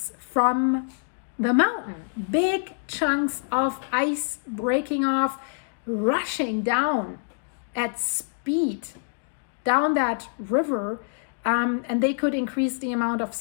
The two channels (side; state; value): right; silent; digital silence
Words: from the mountain, big chunks of ice breaking off, rushing down at speed down that river, and they could increase the amount of